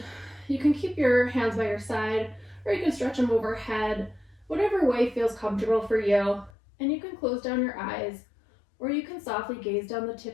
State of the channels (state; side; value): drops out; right; at 6.5 s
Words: you can keep your hands by your side, or you can stretch them overhead, whatever way feels comfortable for you. And you can close down your eyes, or you can softly gaze down the tip